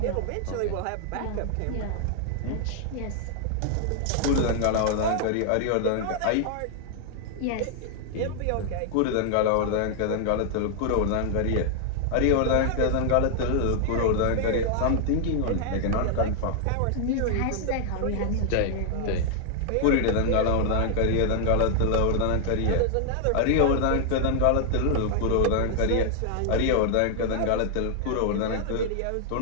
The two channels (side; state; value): both; different; correlation 0.00